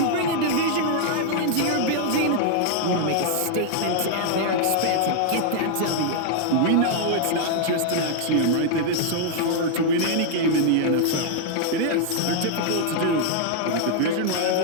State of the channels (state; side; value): different; both; correlation -0.01